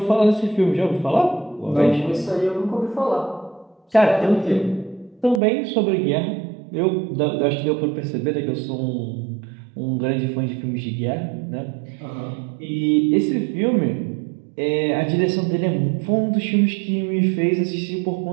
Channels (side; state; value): left; drops out; at 5.4 s